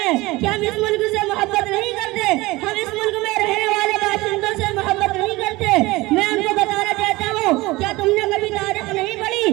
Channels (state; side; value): quieter; left; 20.9 dB